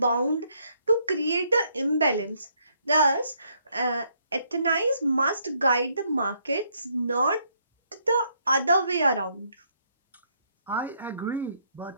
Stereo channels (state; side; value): inverted; both; correlation -0.71